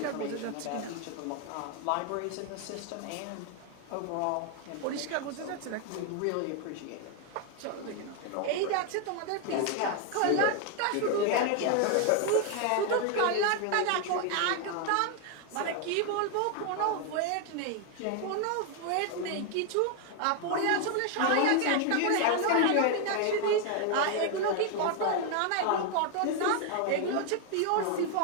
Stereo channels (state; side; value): different; both; correlation 0.00